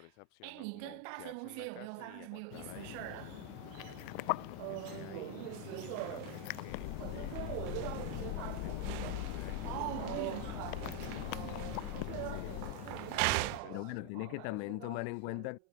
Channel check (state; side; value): different; both; correlation 0.01